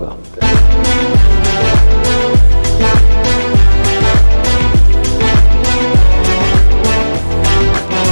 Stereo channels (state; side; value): inverted; both; correlation -1.00